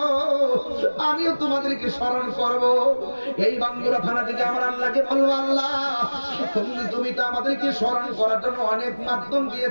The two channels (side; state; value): both; inverted; correlation -1.00